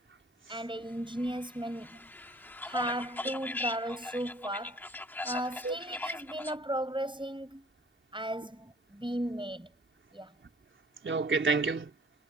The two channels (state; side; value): normal; both; correlation 0.53